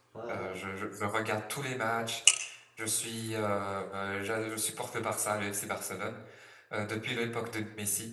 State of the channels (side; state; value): both; identical; correlation 1.00